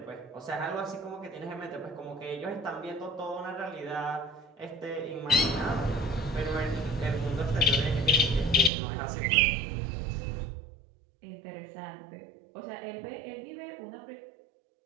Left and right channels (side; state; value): left; drops out; at 8.7 s